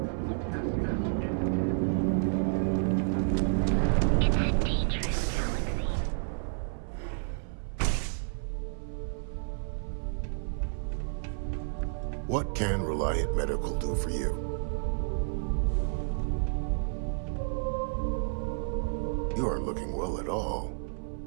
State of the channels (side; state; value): left; silent; 57 dB below the other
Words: What can Reliant Medical do for you? You aren't looking well at all.